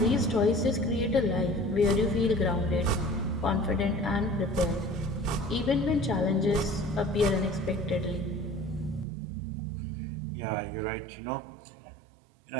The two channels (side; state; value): left; drops out; at 9.1 s